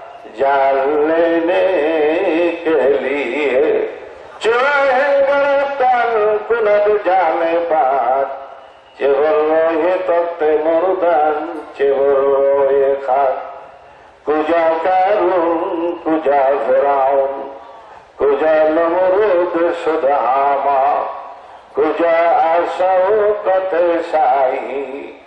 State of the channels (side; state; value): both; identical; correlation 1.00